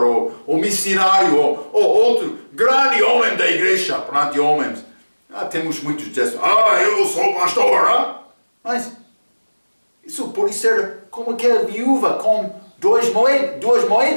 ou missionário, ou outro grande homem da igreja, perante homens. Temos muitos que dizem, eu sou pastor. Mas isso pode ser como aquela viúva com duas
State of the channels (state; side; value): inverted; both; correlation -1.00